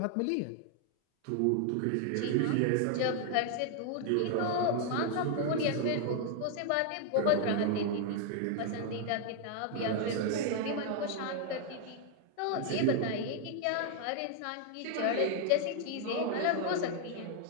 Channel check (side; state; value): both; different; correlation 0.00